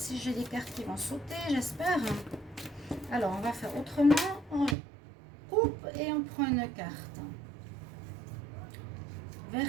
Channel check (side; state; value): left; drops out; at 4.8 s